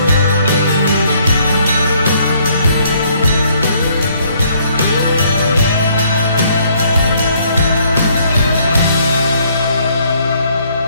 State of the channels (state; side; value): inverted; both; correlation -0.66